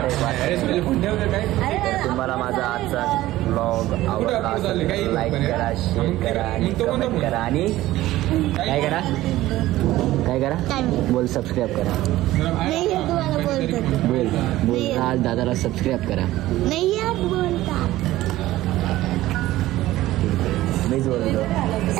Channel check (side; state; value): left; quieter; 16.1 dB